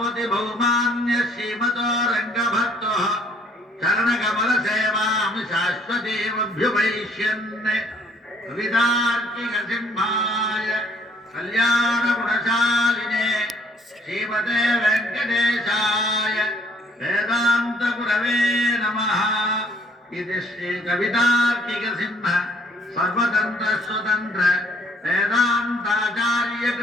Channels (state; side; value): normal; both; correlation 0.62